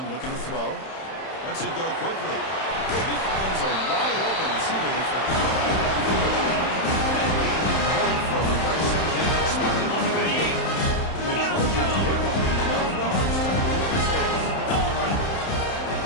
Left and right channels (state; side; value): late; right; 31 ms